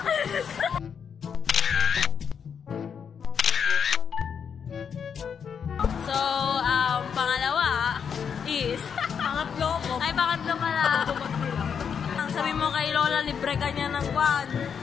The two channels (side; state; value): right; quieter; 7.1 dB